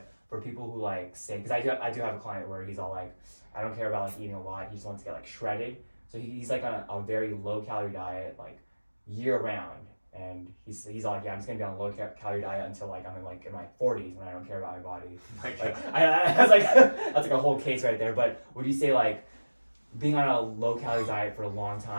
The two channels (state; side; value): inverted; both; correlation -1.00